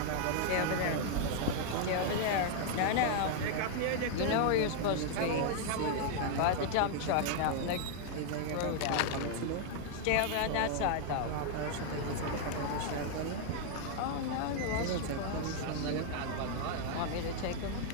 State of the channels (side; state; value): both; different; correlation 0.00